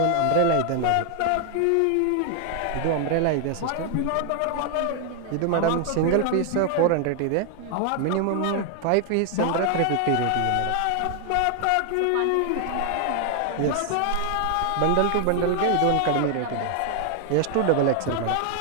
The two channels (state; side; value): different; both; correlation 0.00